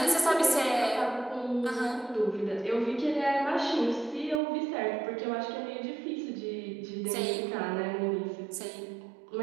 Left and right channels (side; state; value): left; drops out; at 4.4 s